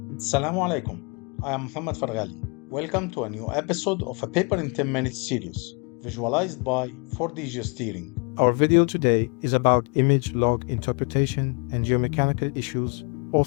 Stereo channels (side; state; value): right; quieter; 34.1 dB